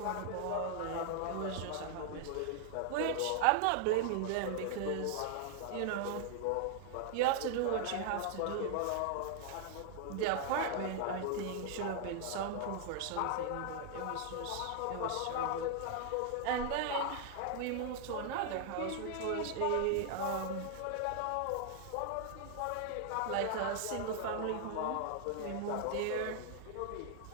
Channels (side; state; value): both; different; correlation 0.00